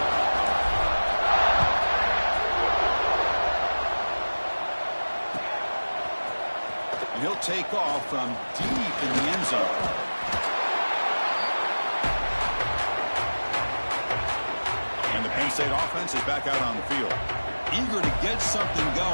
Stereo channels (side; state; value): both; inverted; correlation -1.00